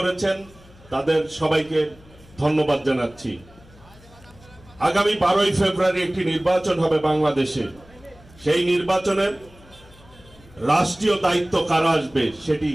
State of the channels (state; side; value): noise; left; hum, 25 dB below the sound